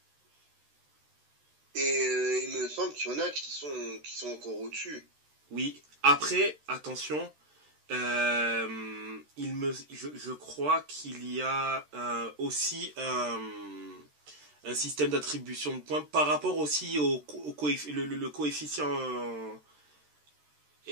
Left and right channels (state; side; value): late; left; 13 ms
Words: Et il me semble qu'il y en a qui sont encore au-dessus. Oui. Après, attention, je crois qu'il y a aussi un système d'attribution de points par rapport aussi le coefficient